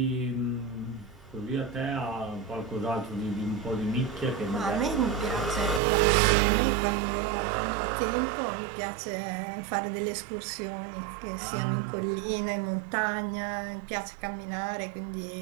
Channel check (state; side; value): drops out; left; at 5.8 s